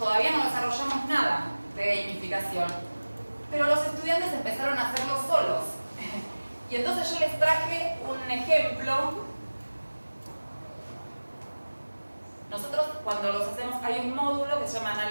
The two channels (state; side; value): inverted; both; correlation -1.00